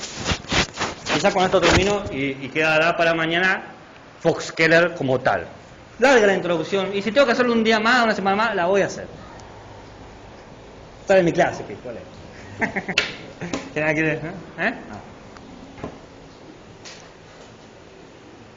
Quizás con esto termino y quedará para mañana Fox Keller como tal. Larga la introducción, y si tengo que hacerlo un día más, una semana más, la voy a hacer. Está en mi clase, ¿qué? ¿Cuál es? ¿Quiere?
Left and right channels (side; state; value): both; identical; correlation 1.00